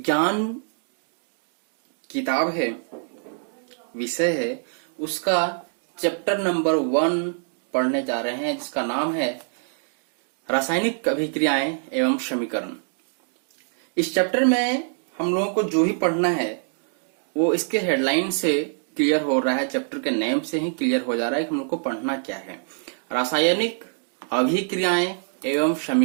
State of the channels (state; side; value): silent; left; digital silence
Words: किताब है, विषय है, उसका चैप्टर नंबर 1 पढ़ने जा रहे हैं, जिसका नाम है रासायनिक अभिक्रियाएं एवं समीकरण। इस चैप्टर में हम लोगों को जो ही पढ़ना है वो इसके हेडलाइन से क्लियर हो रहा है, चैप्टर के नेम से ही क्लियर हो जा रहा है कि हम लोग को पढ़ना क्या है। रासायनिक अभिक्रियाएं एवं